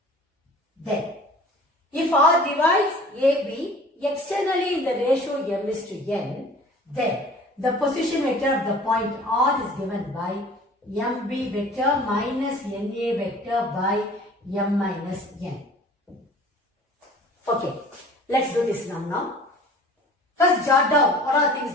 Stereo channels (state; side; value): normal; both; correlation 0.47